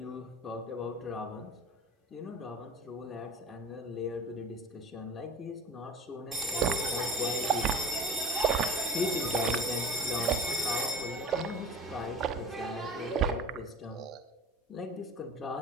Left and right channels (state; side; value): normal; both; correlation 0.41